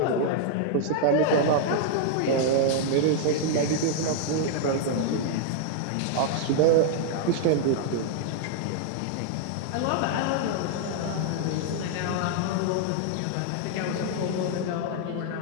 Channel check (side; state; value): both; different; correlation 0.00